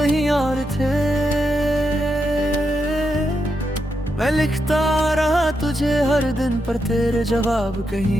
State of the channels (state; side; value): normal; both; correlation 0.84